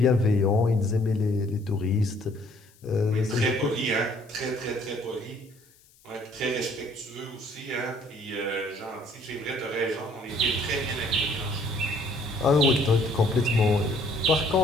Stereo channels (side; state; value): left; noise; hiss, 29 dB below the sound